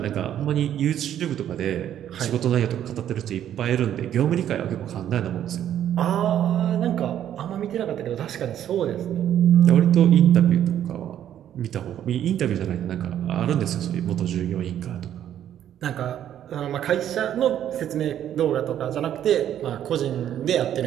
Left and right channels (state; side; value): quieter; left; 10.7 dB